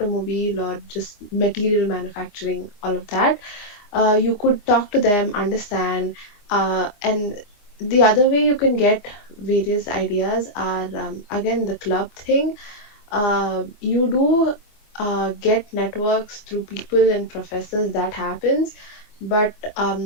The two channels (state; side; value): late; right; 24 ms